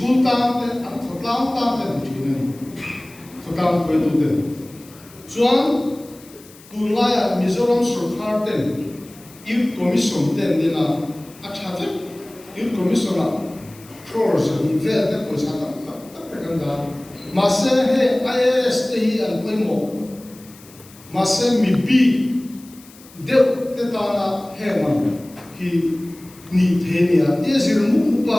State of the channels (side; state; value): left; noise; hiss, 23 dB below the sound